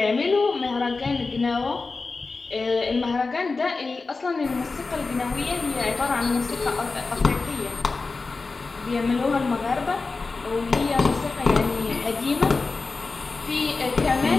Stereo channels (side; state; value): right; quieter; 4.0 dB